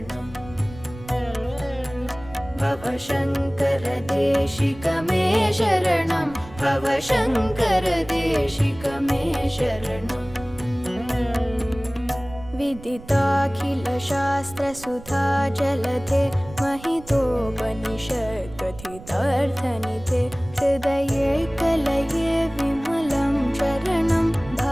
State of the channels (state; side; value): noise; right; rumble, 17 dB below the sound